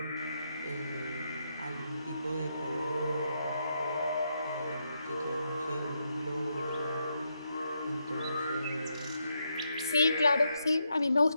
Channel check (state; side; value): inverted; both; correlation -0.81